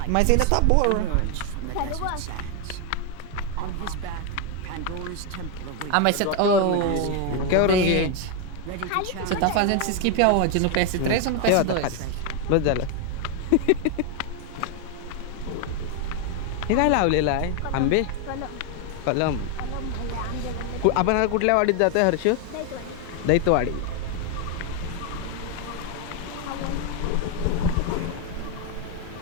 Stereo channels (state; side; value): different; both; correlation 0.01